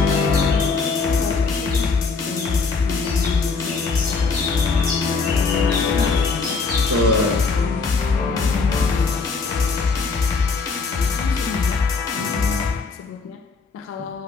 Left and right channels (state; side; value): quieter; right; 4.4 dB